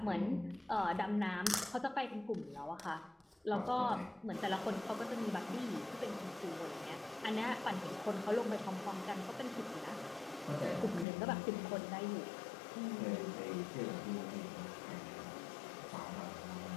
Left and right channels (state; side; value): drops out; right; at 11.1 s